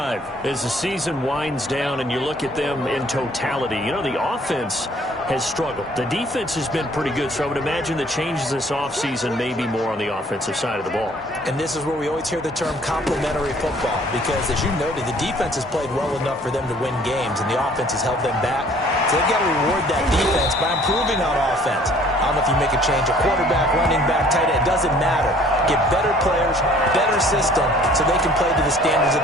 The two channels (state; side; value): normal; both; correlation 0.56